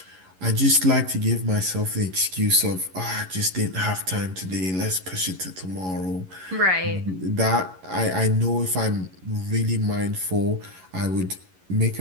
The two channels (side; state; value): left; late; 11 ms